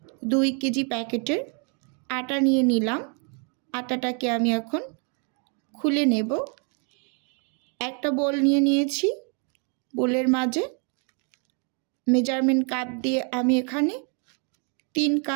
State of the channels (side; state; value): left; quieter; 38.7 dB